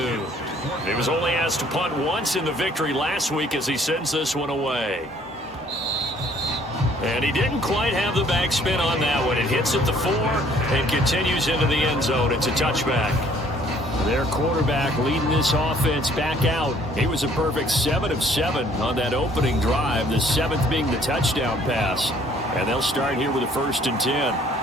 He was only asked to punt once in the victory last week as he sends this one away. And he didn't quite have the backspin on that one. It hits at the 4 and continues into the end zone. It's a touchback. Their quarterback leading this offense back out. He was a perfect 7 of 7 on that opening drive, the 7th being the touchdown pass. And they'll start here with a 1st and 10.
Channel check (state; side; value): normal; both; correlation 0.60